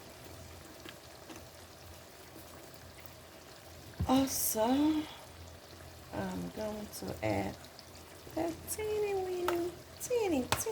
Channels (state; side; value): identical; both; correlation 1.00